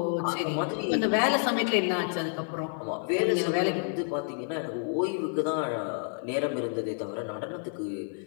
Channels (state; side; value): silent; right; 58 dB below the other